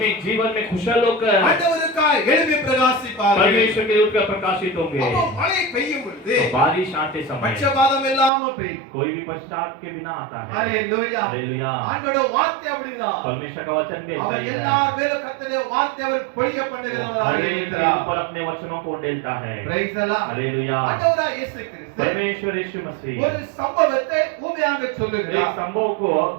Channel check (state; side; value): drops out; left; at 8.3 s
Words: जीवन में खुशहाल होकर ஆண்டவருக்காய் எழும்பி பிரகாசிப்பார்கள். परमेश्वर के दूत का प्रकाशित होंगे। அப்போ மழை பெய்யும் பொழுது तो बारिश आते समय பட்சபாதம் இல்லாம பெய்யும். कोई भी पश्चात के बिना आता है। ஹalleluya. हालेलुया। ஆண்டவருடைய வார்த்தை அப்படிதான். परमेश्वर का वचन भी ऐसा அவர் ही है। எல்லார் மேலும் கர்த்தருடைய வார்த்தை அவர் பொழிய பண்ணுகிறவராக हर एक के இருக்கிறார். ऊपर अपने वचनों को उंडेलता है। Praise the Lord. हालेलुया। ஆண்டவராய் இயேசு கிறிஸ்து परमेश्वर यीशु मसीह ஒரு சம்பவத்தை ஊமையாக एक சொல்லுகிறார். संभव को